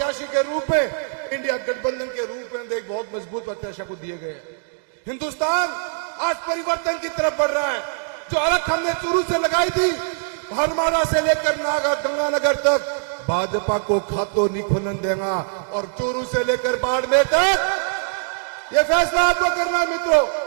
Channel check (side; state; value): left; silent; digital silence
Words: के रूप में, इंडिया गठबंधन के रूप में एक बहुत मजबूत प्रत्याशी को दिए गए। हिंदुस्तान आज परिवर्तन की तरफ बढ़ रहा है। जो अलग हमने चूरू से लगाई थी, हरमारा से लेकर गंगानगर तक भाजपा को खातो नहीं खुलन देगा और चूरू से लेकर बाड़मेर तक ये फैसला आपको करना है मित्रों।